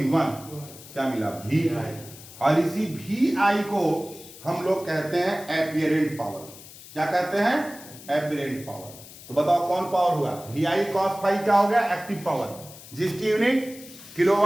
1, क्या मिला वी आई। और इसी वी आई को हम लोग कहते हैं एपिरेंट पावर। क्या कहते हैं? एपिरेंट पावर। तो बताओ कौन पावर हुआ? वी आई कॉस फाइव क्या हो गया? एक्टिव पावर, जिसकी यूनिट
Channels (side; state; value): left; noise; hiss, 17 dB below the sound